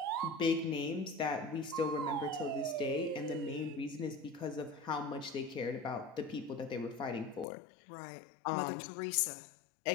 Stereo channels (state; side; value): drops out; right; at 7.5 s